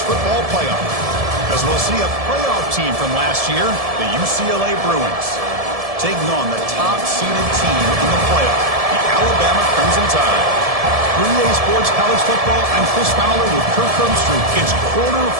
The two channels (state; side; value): late; left; 1.7 ms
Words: football playoff. As we'll see a playoff team from last year, the UCLA Bruins, taking on the top-seeded team in the playoff, the Alabama Crimson Tide. 3A Sports College Football, I'm Chris Fowler with Kirk Herbstreit. It's